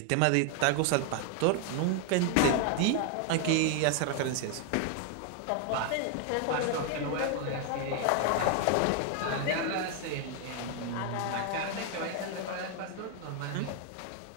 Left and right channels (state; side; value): different; both; correlation 0.00